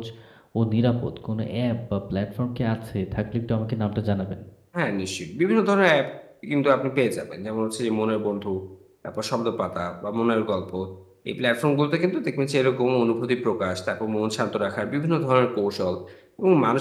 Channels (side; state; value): both; identical; correlation 1.00